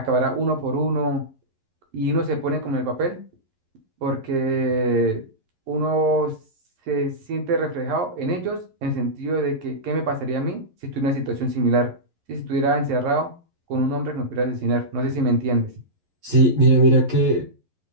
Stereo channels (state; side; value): late; left; 11 ms